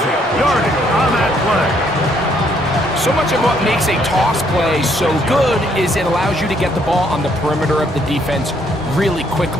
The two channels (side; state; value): both; normal; correlation 0.69